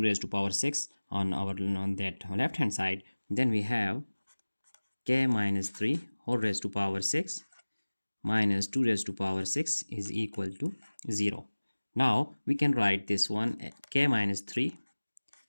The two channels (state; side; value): inverted; both; correlation -1.00